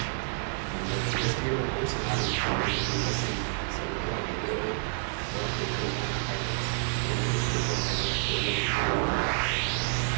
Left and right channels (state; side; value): silent; left; digital silence